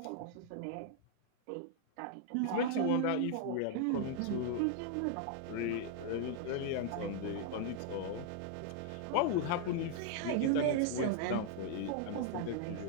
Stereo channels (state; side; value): different; both; correlation 0.00